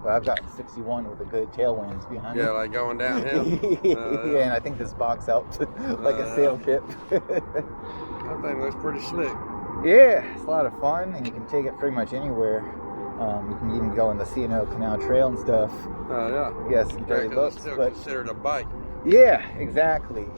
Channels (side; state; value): both; inverted; correlation -1.00